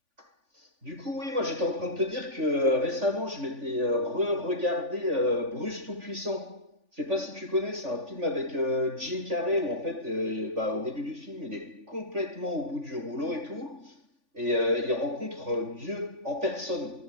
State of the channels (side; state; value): left; late; 3.5 ms